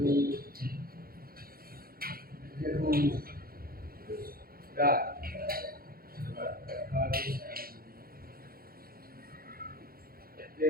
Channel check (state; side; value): late; left; 0.43 ms